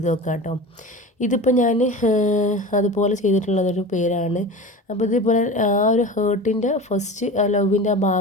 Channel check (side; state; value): both; normal; correlation 0.32